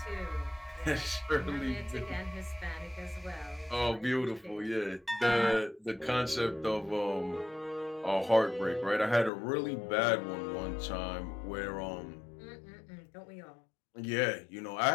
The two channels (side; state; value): right; drops out; at 9.3 s